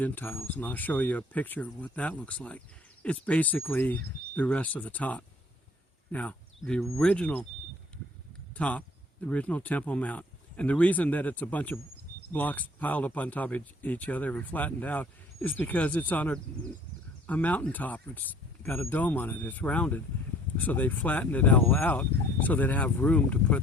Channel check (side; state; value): both; normal; correlation 0.55